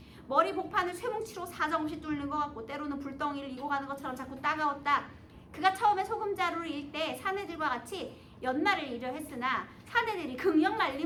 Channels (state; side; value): identical; both; correlation 1.00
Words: 머리 복판을 쇠뭉치로 사정없이 뚫는 것 같고 때로는 불덩이를 이고 가는 것처럼 자꾸 따가웠다. 그가 처음에 소금자루를 일 때 사내들과 같이 연말을 이려 했으나 사내들이 극력